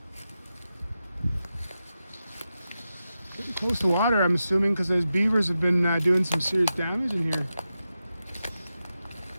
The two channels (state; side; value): inverted; both; correlation -0.91